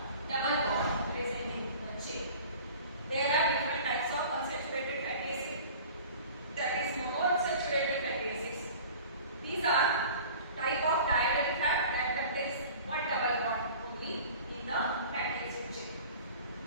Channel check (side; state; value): both; inverted; correlation -0.43